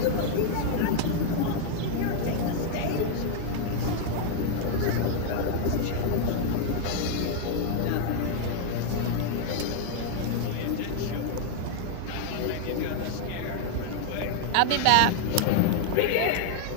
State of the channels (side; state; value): both; different; correlation 0.00